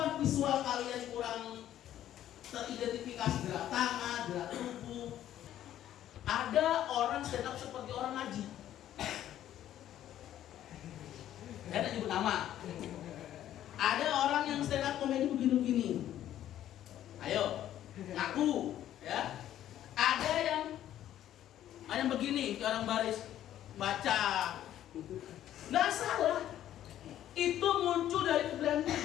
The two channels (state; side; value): quieter; right; 11.9 dB